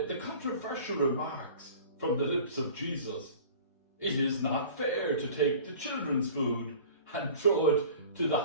controversial remarks from the lips of Jesus. It is not fair to take the children's food and throw it to the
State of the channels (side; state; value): both; inverted; correlation -0.43